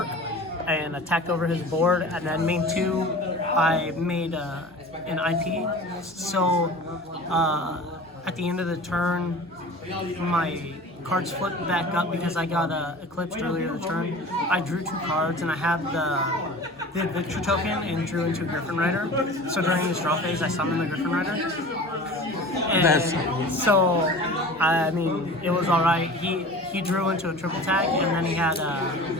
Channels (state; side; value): normal; both; correlation 0.39